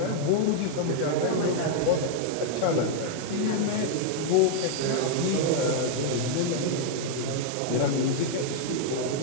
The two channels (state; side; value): different; both; correlation -0.01